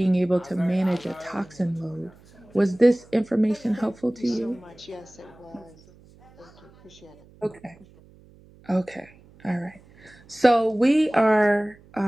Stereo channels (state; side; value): noise; right; hum, 26 dB below the sound